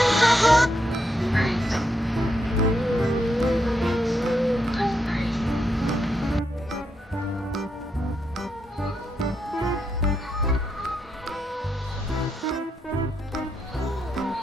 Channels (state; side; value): normal; both; correlation 0.81